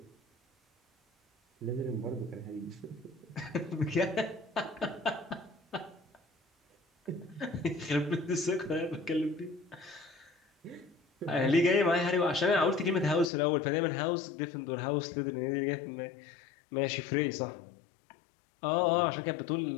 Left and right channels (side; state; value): right; drops out; at 13.3 s